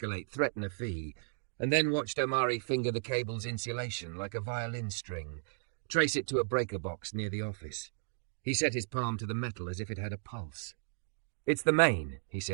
threaten a fee, and then watched Omari finger the cable's insulation like a violin string, trace it to a breaker box near the office. He set his palm to the metal as if it had a pulse. It's the main, he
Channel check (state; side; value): silent; left; digital silence